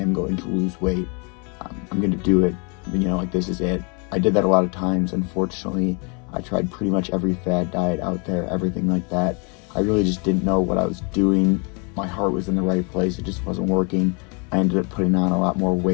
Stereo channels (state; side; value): quieter; right; 33.9 dB